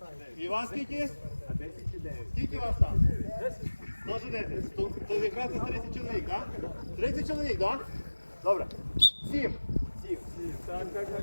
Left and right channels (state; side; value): inverted; both; correlation -1.00